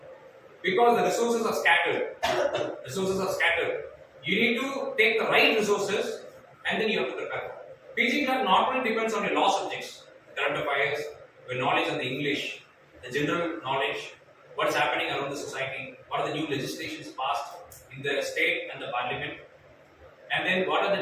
Because the resources are scattered. Resources are scattered. You need to take the right resources and then you have to prepare. PG CLAT not only depends on your law subjects, current affairs, your knowledge on the English, the general knowledge, what is happening around the society, what are the new legislations passed in the state and the parliament, and then what are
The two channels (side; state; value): both; identical; correlation 1.00